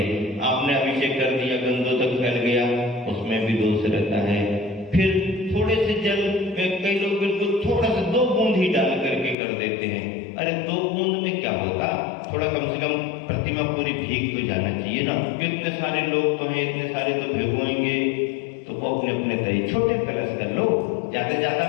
आपने अभिषेक कर दिया, गंदोदक फैल गया, उसमें भी दोष रहता है। फिर थोड़े से जल, कई लोग बिल्कुल थोड़ा सा 2 बूंद ही डाल करके कर देते हैं। अरे 2 बूंद में क्या होगा, थोड़ा कम से कम प्रतिमा पूरी भीग तो जाना चाहिए ना। इतने सारे लोग तो हैं, इतने सारे तो भिगोएंगे, तो वो अपने अपने तरीके छोटे कलश कर लो,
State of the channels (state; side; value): drops out; right; at 9.3 s